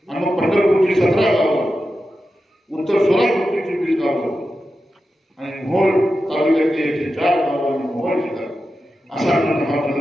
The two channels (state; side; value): normal; both; correlation 0.91